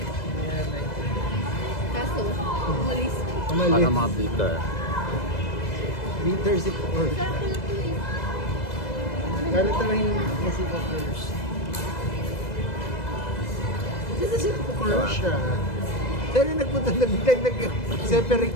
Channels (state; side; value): late; right; 2.0 ms